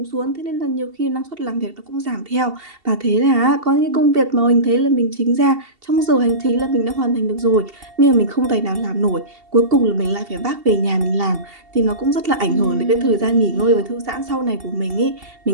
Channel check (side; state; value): left; late; 2.7 ms